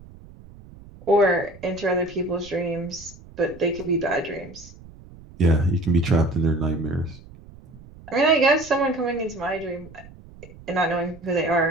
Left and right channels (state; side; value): noise; right; rumble, 20 dB below the sound